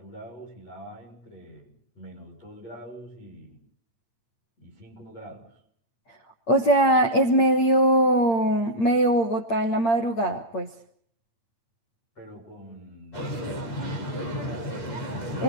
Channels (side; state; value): right; late; 8.7 ms